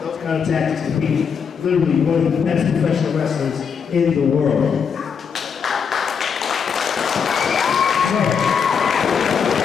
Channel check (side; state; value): right; quieter; 6.6 dB